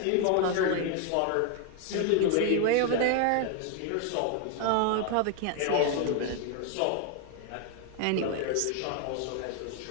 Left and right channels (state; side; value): different; both; correlation 0.00